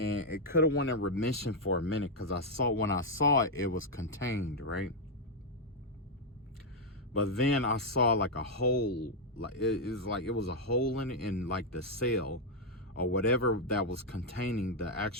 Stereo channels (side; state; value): both; normal; correlation -0.01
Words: it could have went in remission for a minute, because when I saw it, it was contained, right? But then I saw a hole, it was a hole in the cell or whatever that was containing the